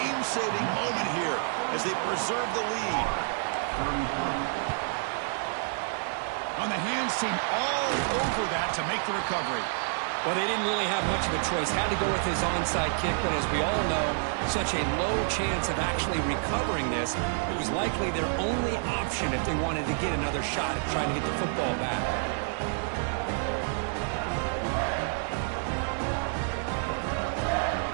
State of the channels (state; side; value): silent; left; 59 dB below the other